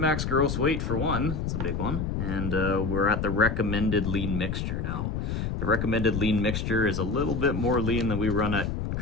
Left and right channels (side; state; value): left; noise; rumble, 2 dB below the sound